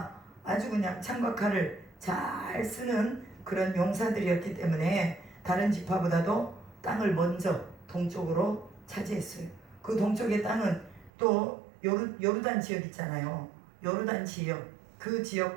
아주 그냥 창과 칼을 잘 쓰는 그런 용사들이었기 때문에 다른 지파보다도 땅을 먼저 동쪽으로 차지했어요. 그 동쪽의 땅은 또 요르단 지역 있잖아요. 요르단 지역, 그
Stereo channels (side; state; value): left; drops out; at 11.1 s